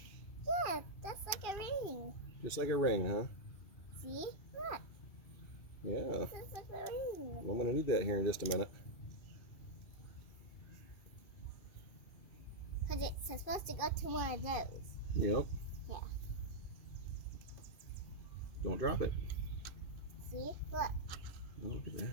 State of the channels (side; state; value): right; late; 2.6 ms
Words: Yeah, that's like a ring. Just like a ring, huh? See? Look, Yeah. this is like a ring. Well, I'm going to need that here in just a minute. Because it's supposed to go to one of those. Yep. Yeah. Don't drop it. See? Look. Oh, look at